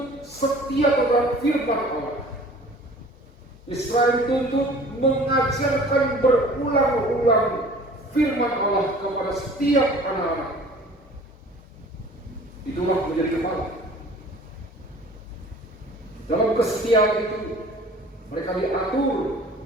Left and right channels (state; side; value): normal; both; correlation 0.47